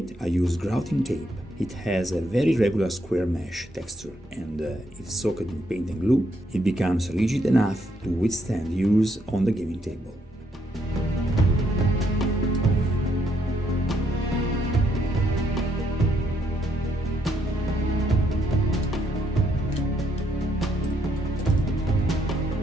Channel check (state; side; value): normal; both; correlation 0.74